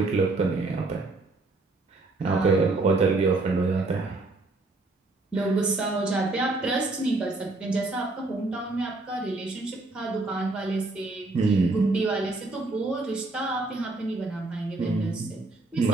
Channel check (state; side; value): quieter; left; 3.2 dB